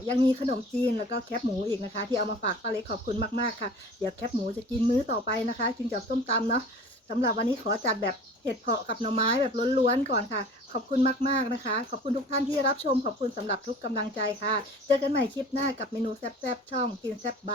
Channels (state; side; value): normal; both; correlation 0.43